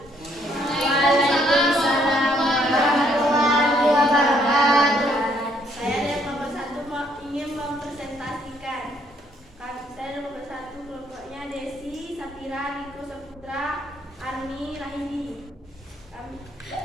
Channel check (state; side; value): normal; both; correlation 0.68